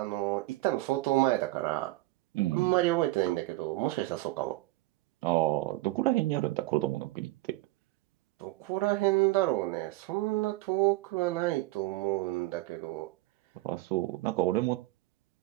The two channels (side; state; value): left; quieter; 19.3 dB